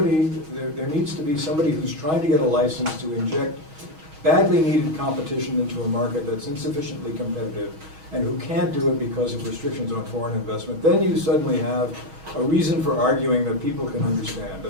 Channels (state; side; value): late; left; 6.3 ms